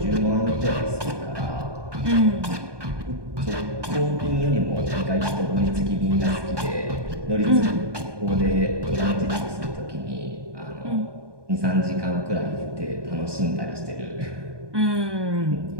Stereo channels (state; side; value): late; left; 1.2 ms